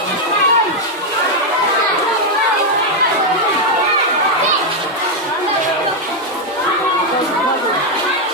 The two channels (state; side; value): normal; both; correlation 0.01